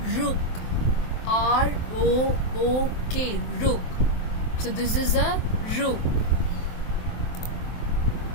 rook, R-O-O-K, rook. So this is a rook.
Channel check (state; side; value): late; right; 23 ms